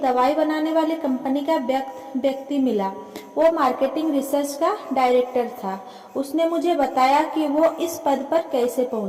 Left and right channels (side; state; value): both; identical; correlation 1.00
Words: दवाई बनाने वाली कंपनी का व्यक्ति मिला। वो मार्केटिंग रिसर्च का डायरेक्टर था। उसने मुझे बताया कि वो इस पद पर कैसे